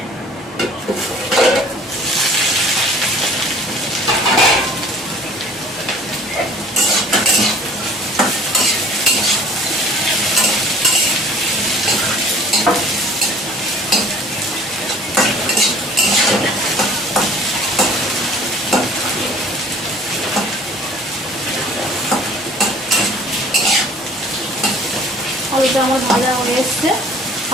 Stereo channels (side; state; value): both; normal; correlation 0.50